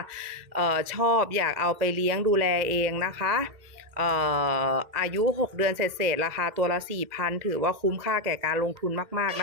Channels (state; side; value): late; left; 2.1 ms